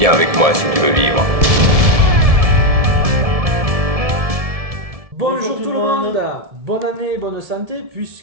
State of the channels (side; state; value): left; late; 1.7 ms